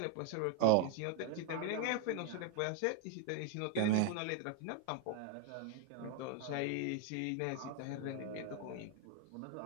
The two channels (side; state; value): both; different; correlation 0.00